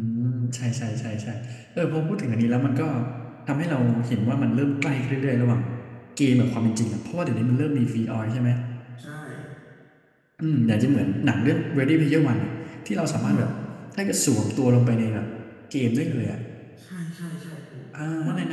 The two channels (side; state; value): both; identical; correlation 1.00